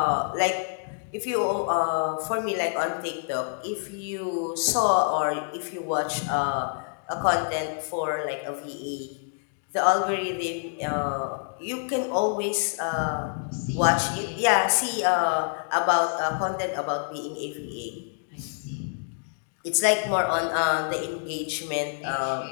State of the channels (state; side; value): silent; right; digital silence